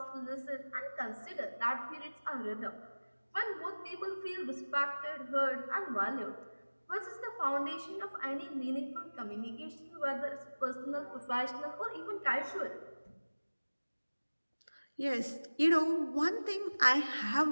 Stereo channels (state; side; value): inverted; both; correlation -1.00